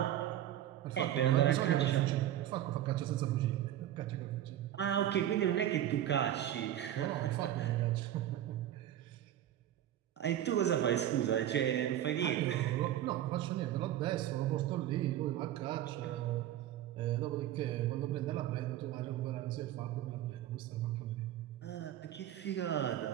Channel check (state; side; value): quieter; left; 12.2 dB